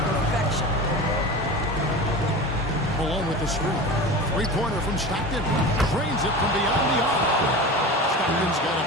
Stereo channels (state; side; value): normal; both; correlation 0.31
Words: perfection. Malone with the screen. Three-pointer from Stockton. Drains it from beyond the arc. Stockton's got a